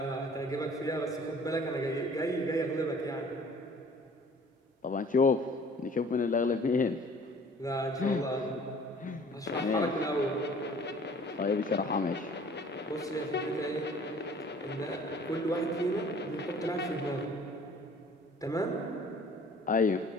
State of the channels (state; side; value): normal; both; correlation 0.51